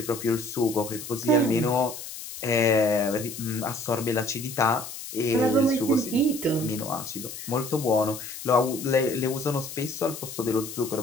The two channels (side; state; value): left; noise; hiss, 10 dB below the sound